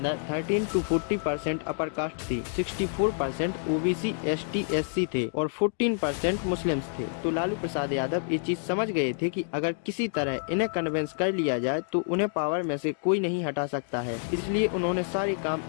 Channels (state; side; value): silent; right; digital silence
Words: 13 to 40% अपर कास्ट थी, 64% ओबीसी एसटी एससी थे और 14% मुस्लिम्स थे। तो लालू प्रसाद यादव ये चीज समझ गए थे कि अगर किसी तरह इन्हें कन्विंस कर लिया जाए तो उन्हें पावर में से कोई नहीं हटा सकता है। इसलिए उन्होंने सारे काम